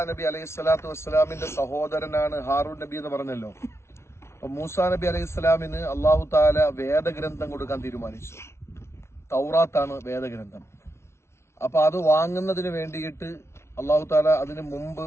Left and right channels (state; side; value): late; right; 0.13 ms